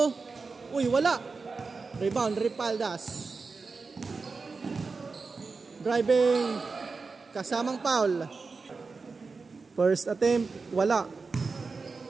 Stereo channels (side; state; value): left; quieter; 4.4 dB